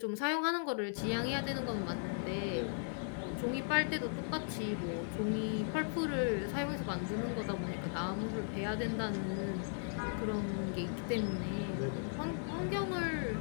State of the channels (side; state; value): right; silent; digital silence